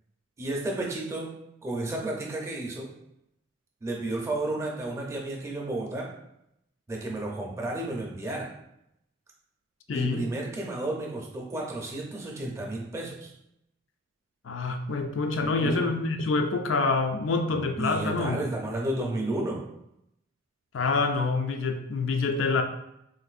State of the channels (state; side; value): normal; both; correlation 0.39